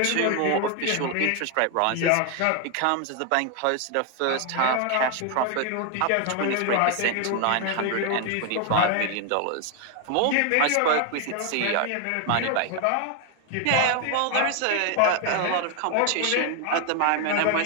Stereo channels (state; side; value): different; both; correlation 0.01